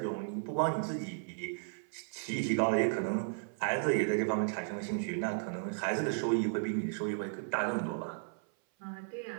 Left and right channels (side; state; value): left; silent; 55 dB below the other